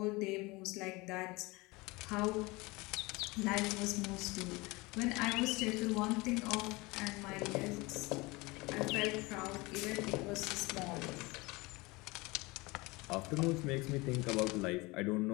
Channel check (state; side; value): quieter; right; 23.8 dB